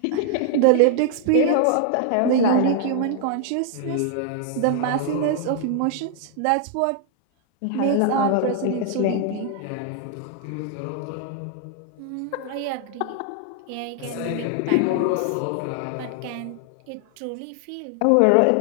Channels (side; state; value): both; different; correlation 0.00